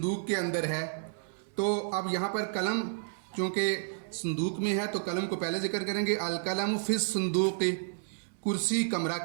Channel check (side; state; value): left; silent; digital silence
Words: के अंदर है, तो अब यहाँ पर कलम चूँकि संदूक में है तो कलम को पहले ज़िक्र करेंगे, अल कलम फिस संदूकी। कुर्सी कमरा